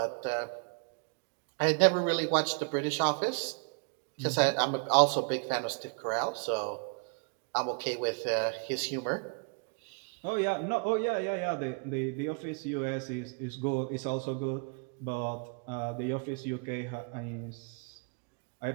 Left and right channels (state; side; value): quieter; left; 36.3 dB